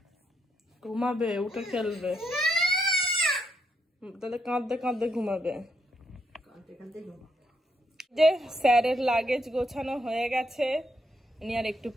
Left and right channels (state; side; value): normal; both; correlation 0.78